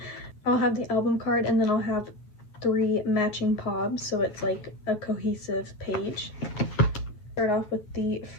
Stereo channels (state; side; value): late; right; 9.4 ms